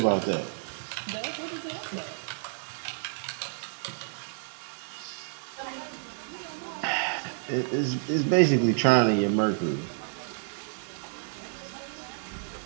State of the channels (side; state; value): left; silent; 58 dB below the other